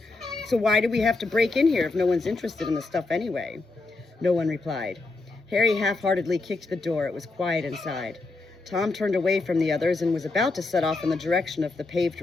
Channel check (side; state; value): right; quieter; 3.5 dB